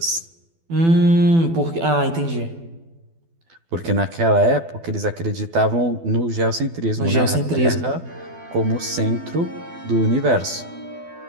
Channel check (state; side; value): late; left; 12 ms